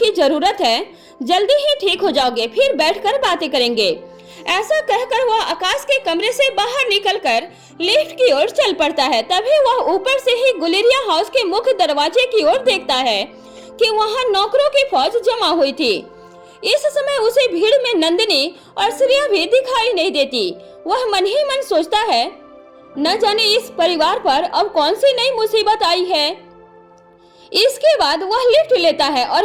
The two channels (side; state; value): both; identical; correlation 1.00